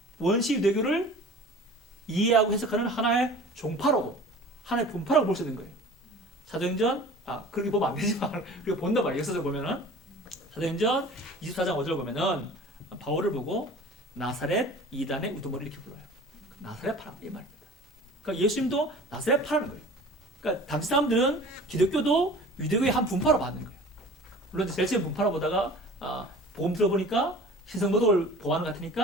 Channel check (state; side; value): normal; both; correlation 0.43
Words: 원시 유대교를 이해하고 해석하는 하나의 종파라고, 하나의 분파라고 볼 수 있는 거예요. 사도행전, 그렇게 보면 안 되지만, 그리고 본다 말이에요. 역사적으로 보면은. 사도행전 24장 5절 보면은, 바울을 보고 나사렛 이단의 우두머리 이렇게 불러요. 나사렛 파라, 이 말입니다. 그러니까 예수님도 나사렛 파라는 거예요. 그러니까 당시 사람들은 기독교도 유대교의 한 분파로 받는 거예요. 물론 제일 처음 분파로 보다가, 복음 들어보니까 신성모독을 보호하는 것